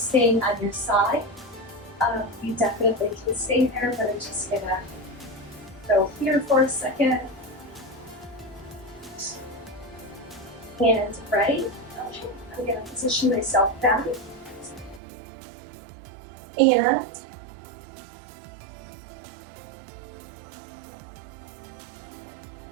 staying on your side, you definitely can stay there, but I'm just gonna go here for a second. And right, okay, I'm gonna position myself back. And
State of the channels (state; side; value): drops out; left; at 15.0 s